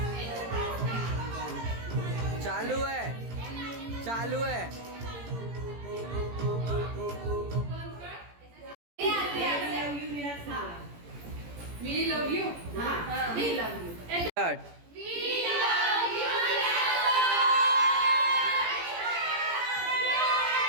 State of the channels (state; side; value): late; left; 17 ms